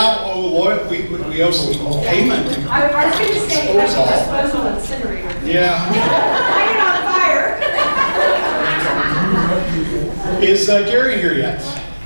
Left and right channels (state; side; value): inverted; both; correlation -1.00